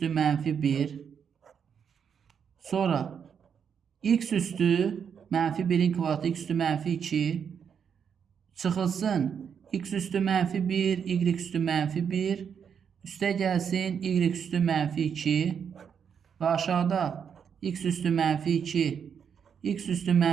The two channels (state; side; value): quieter; left; 7.3 dB